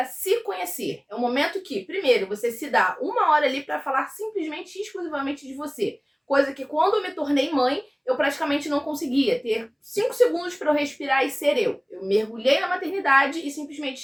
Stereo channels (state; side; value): identical; both; correlation 1.00